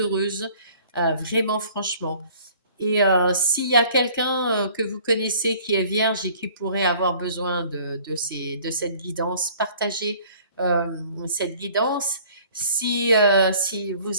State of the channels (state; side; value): inverted; both; correlation -0.53